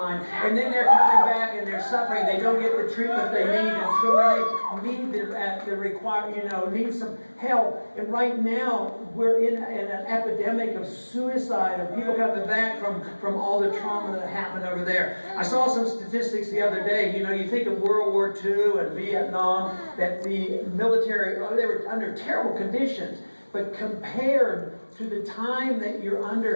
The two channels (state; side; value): inverted; both; correlation -1.00